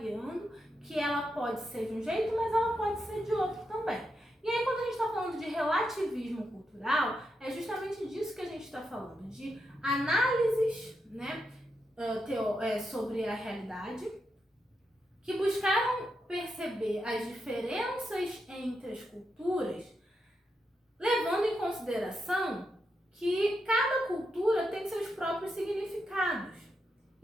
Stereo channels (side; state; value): both; normal; correlation 0.84